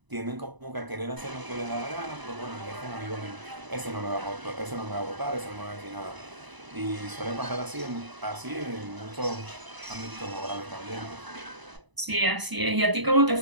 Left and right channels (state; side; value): late; left; 1.0 ms